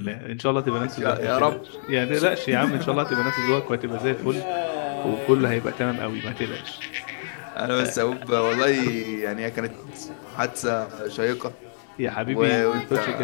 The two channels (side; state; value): right; silent; digital silence